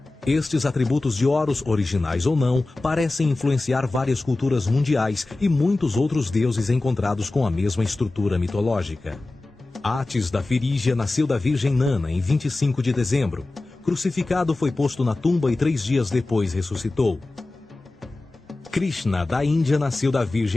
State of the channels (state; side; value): quieter; right; 3.0 dB